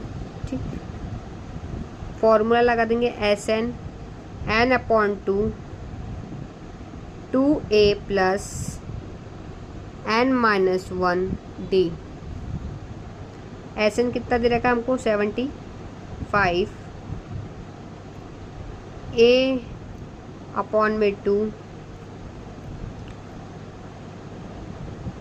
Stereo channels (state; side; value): identical; both; correlation 1.00